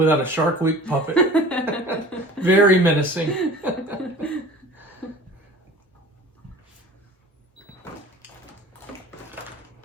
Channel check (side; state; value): both; normal; correlation 0.42